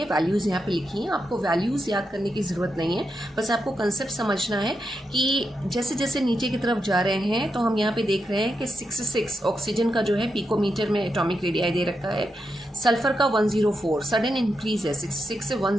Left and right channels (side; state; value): both; normal; correlation 0.85